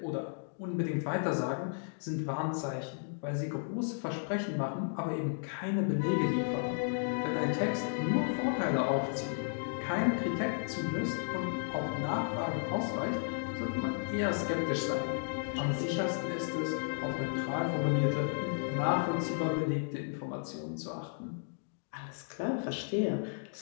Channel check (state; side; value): silent; right; digital silence